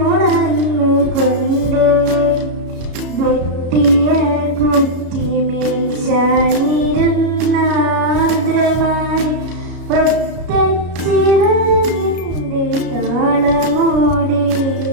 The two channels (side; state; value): left; late; 33 ms